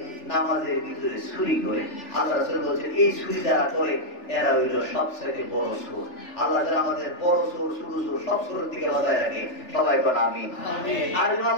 নামাজের ভিতরে চুরি করে। আল্লাহ রাসূল বলছেন, এই চুরি যারা করে এরা হইল সবচেয়ে বড় চোর। আল্লাহ যারা আমাদের বড় চোর, ছোট চোর সব চোরের দিকে বাজায় রাখে। সবাই বলেন আমিন।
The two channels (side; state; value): right; late; 3.4 ms